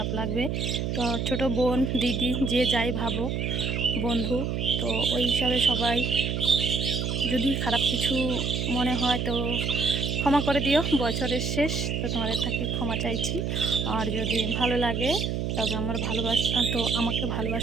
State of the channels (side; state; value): right; noise; hum, 1 dB below the sound